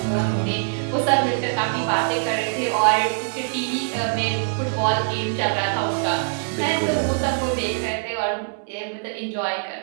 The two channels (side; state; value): left; silent; digital silence